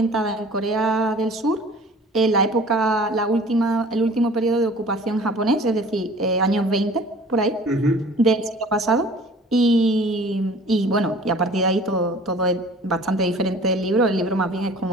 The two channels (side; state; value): both; normal; correlation 0.47